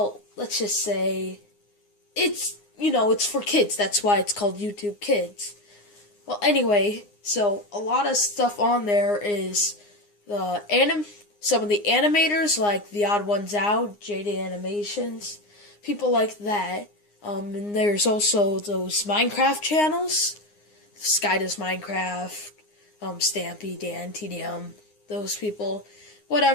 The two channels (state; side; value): late; right; 9.7 ms